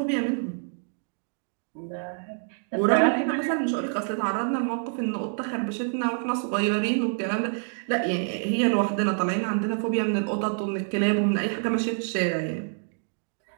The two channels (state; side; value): silent; left; 56 dB below the other